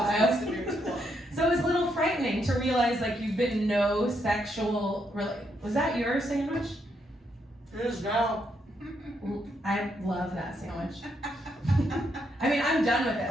So it was a little frightening to to realize like you've been no sexual. Was that your sandwich? It is now. I love that sandwich. I mean, I'm done with it.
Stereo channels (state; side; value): normal; both; correlation 0.77